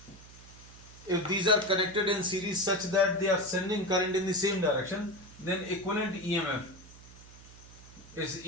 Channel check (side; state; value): right; noise; hum, 20 dB below the sound